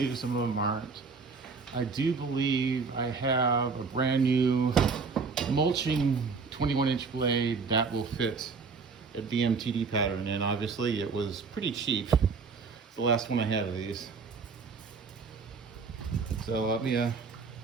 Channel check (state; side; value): quieter; left; 4.9 dB